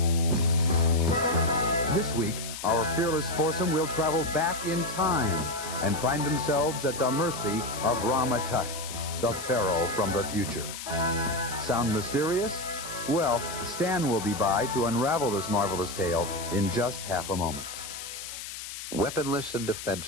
This week, our fearless foursome will travel back in time and find themselves at the mercy of Rama, the Pharaoh from the future. Sound mysterious? Well, Stan will be by to unravel this marvelous tale in just half a moment. Weaponless and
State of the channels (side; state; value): left; noise; hiss, 9 dB below the sound